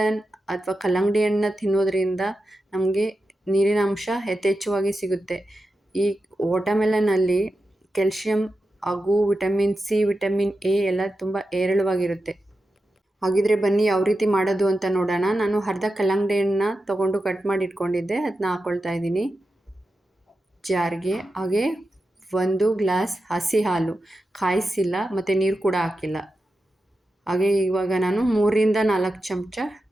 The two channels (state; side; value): normal; both; correlation 0.91